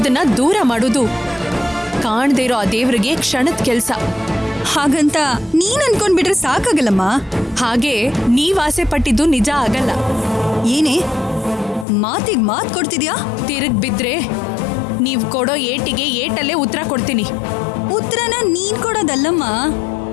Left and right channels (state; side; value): drops out; right; at 11.9 s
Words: ದೂರ ಮಾಡೋದು ಕಾಣ್ದೇ ಇರೋ ಆ ದೇವ್ರಿಗೆ ಕ್ಷಣದ ಕೆಲ್ಸ. ಹಾಗಂತ ನೀನ್ ಅನ್ಕೊಂಡ್ಬಿಟ್ರೆ ಸಾಕಾಗಲ್ಲಮ್ಮ. ಹಾಗೆ ನೀವ್ ಆಸೆ ಪಟ್ಟಿದ್ದು ನಿಜ ಆಗಲ್ಲ. ಏನೇ ಮಾತಿಗೆ ಮಾತು ಕೊಡ್ತಿದ್ಯಾ? ತಿರುಗ್ ಬಿದ್ರೆ ನೀವ್ ಕೊಡೋ ಏಟಿಗೆ ಏಟಲ್ಲೇ ಉತ್ತರ ಕೊಡ್ತೀನಿ. ಉತ್ತರನ ನೀನ್ ಕೊಡೋದಲ್ಲಮ್ಮ,